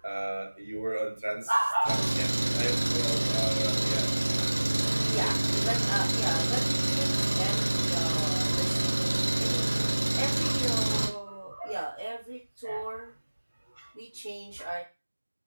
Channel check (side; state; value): both; inverted; correlation -1.00